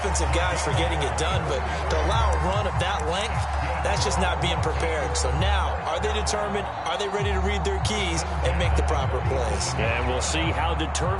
guys for getting it done, but to allow a run of that length, that's just not being prepared. So now, are they determined? Are they ready to read their keys and make the proper plays? And we'll see how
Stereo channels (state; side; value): identical; both; correlation 1.00